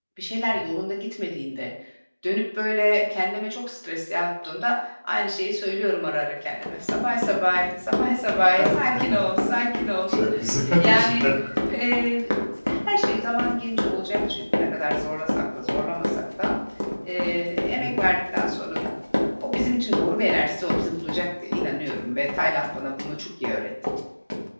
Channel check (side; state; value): both; inverted; correlation -1.00